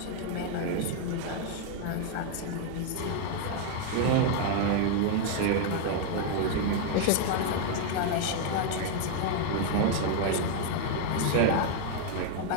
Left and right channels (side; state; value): both; different; correlation 0.00